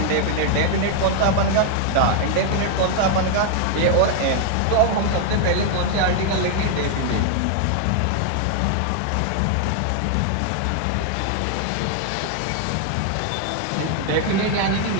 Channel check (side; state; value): both; different; correlation 0.00